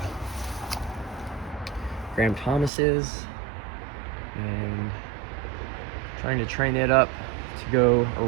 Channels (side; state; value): left; drops out; at 2.7 s